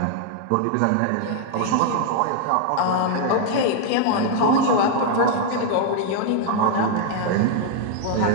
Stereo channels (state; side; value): different; both; correlation 0.00